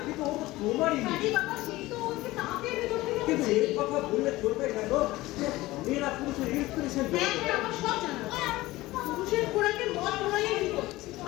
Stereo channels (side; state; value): right; quieter; 18.6 dB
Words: কিন্তু ও তো তোমারই মেয়ে। কাজী বাবা সেই তো ওকে তাঁতের ভেতর থেকে কিন্তু বলছে। এই কথা বললে চলবে কেন? মেয়েরা পুরুষের ইন্সপিরেশন হ্যাঁ, হ্যাঁ, আমার সব জানা আছে। পুরুষের খোরাকে মদ ধরাইয়ে দিত,